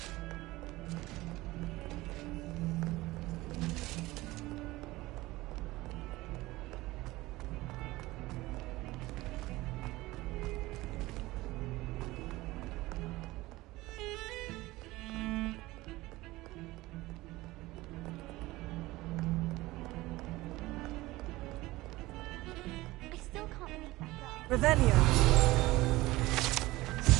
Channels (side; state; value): left; quieter; 19.2 dB